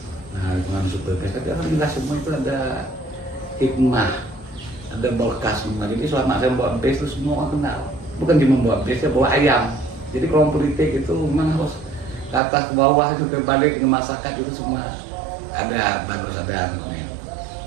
Nah, dengan super base, tapi alhamdulillah semua itu ada hikmah, ada berkah semua. Jadi selama saya bawa base itu semua orang kenal. Bukan cuma bawa base, saya bawa ayam. Jadi kalau politik itu memang harus ke atas ke bawah itu ke balik ke masyarakat itu semua ada bagus ada anunya.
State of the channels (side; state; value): left; drops out; at 12.4 s